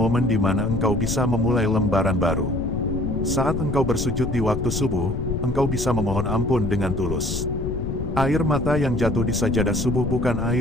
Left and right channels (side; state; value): left; noise; rumble, 3 dB below the sound